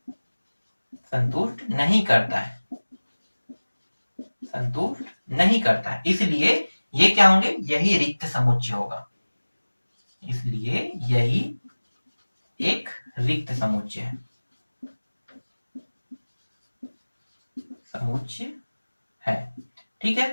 नहीं करता है, संतुष्ट नहीं करता है। इसलिए ये क्या होंगे, यही रिक्त समुच्चय होगा। इसलिए यही एक रिक्त समुच्चय है, समुच्चय है। ठीक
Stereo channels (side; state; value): both; inverted; correlation -1.00